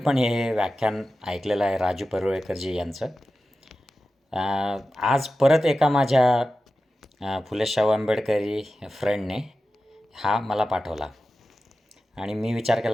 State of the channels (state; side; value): normal; both; correlation 0.94